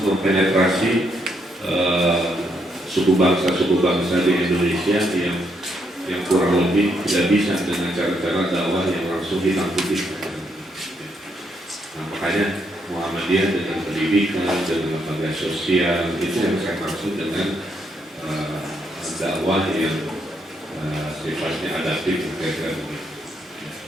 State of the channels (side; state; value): both; normal; correlation 0.76